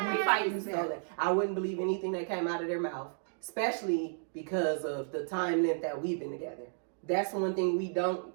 fighting stole it. I wouldn't believe anything that came out of their mouth, especially because of the time length that we've been together. That's one thing we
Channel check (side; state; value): left; silent; digital silence